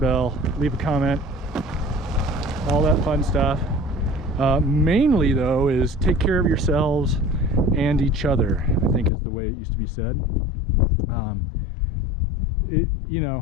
leave a comment, all that fun stuff. Mainly though is take care of yourselves and each other, I think is the way it used to be said. You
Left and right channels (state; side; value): drops out; right; at 9.1 s